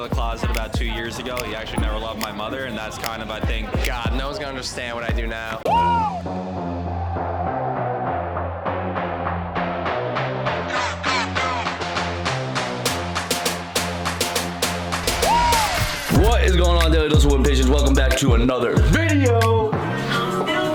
the closet about 2 years ago. He actually never loved my mother, and that's kind of, I think, God, no one's going to understand what I do now. What is going on, Daily Dose of Wood Patience? Welcome back to another video.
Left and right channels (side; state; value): both; identical; correlation 1.00